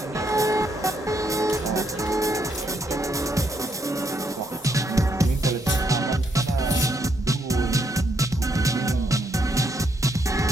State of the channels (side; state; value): both; normal; correlation 0.75